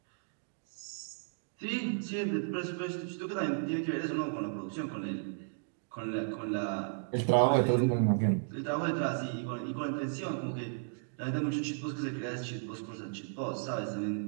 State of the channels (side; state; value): left; silent; digital silence